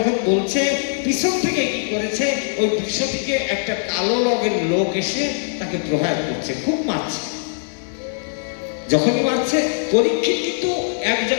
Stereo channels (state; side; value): silent; right; 65 dB below the other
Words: বলছে, পিছন থেকে কি করেছে, ওই বিশ্বটিকে একটা কালো রঙের লোক এসে তাকে প্রহার করছে, খুব মারছে। যখনই মারছে, পরীক্ষিত কিন্তু এক